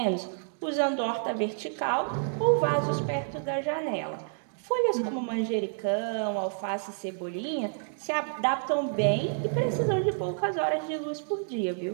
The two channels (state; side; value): silent; left; digital silence